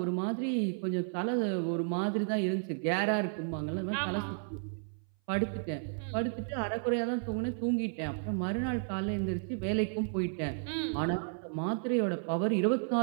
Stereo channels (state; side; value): silent; left; 56 dB below the other